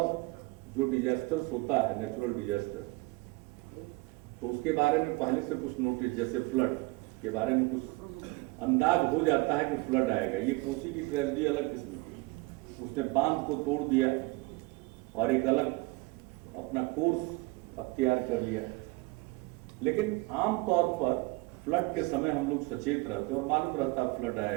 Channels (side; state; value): left; quieter; 24.0 dB